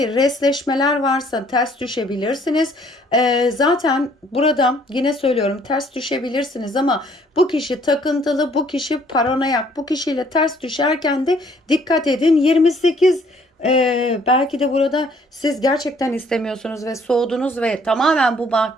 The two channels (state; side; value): normal; both; correlation 0.62